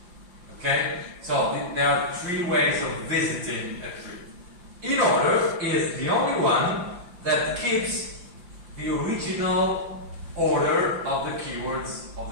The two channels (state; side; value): late; left; 5.7 ms